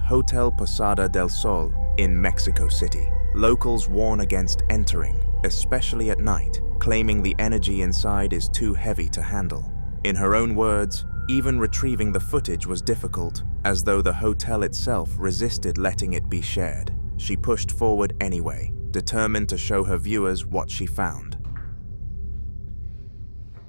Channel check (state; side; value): inverted; both; correlation -1.00